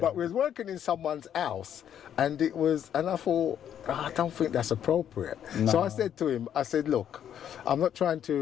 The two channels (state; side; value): quieter; right; 9.6 dB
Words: we was working in someone's house, and I thought, I don't think that's appropriate. No. So I said to him, look, I'm not trying